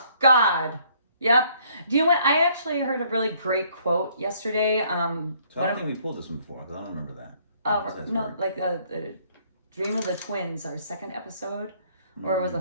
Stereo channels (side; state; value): both; inverted; correlation -0.63